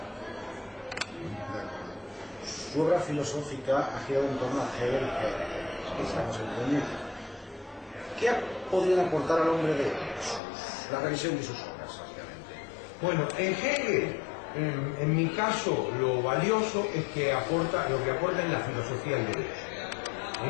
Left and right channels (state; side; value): drops out; right; at 10.4 s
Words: Su obra filosófica ha girado en torno a Hegel, que estamos entendiendo. ¿Qué podrían aportar al hombre de la revisión de sus obras, básicamente? Bueno, en Hegel, en mi caso, lo valioso es que lo que aporta en la filosofía del derecho.